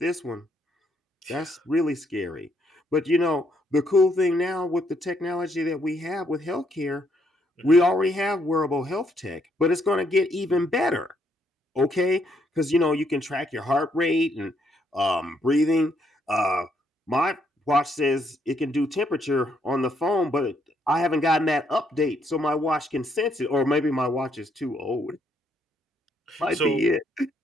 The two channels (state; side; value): normal; both; correlation 0.73